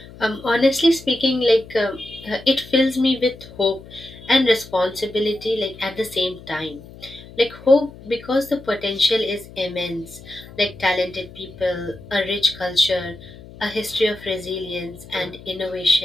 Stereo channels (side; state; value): left; noise; hum, 18 dB below the sound